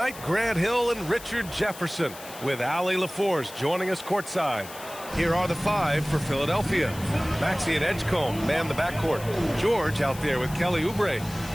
Grant Hill and Richard Jefferson, with Allie LaForce joining us courtside. Here are the 5 for Philadelphia. Maxey and Edgecombe man the backcourt. George out there with Kelly Oubre.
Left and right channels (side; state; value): left; noise; hiss, 15 dB below the sound